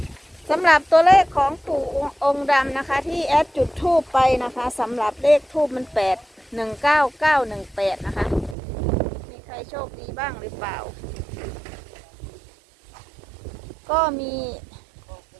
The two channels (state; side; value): drops out; left; at 8.6 s